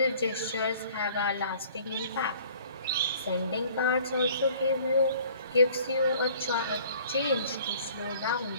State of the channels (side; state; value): both; inverted; correlation -0.53